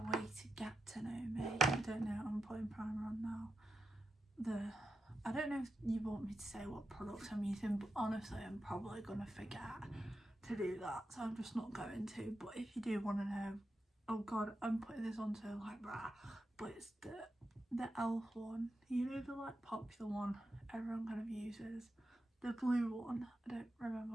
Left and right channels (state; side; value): normal; both; correlation 0.88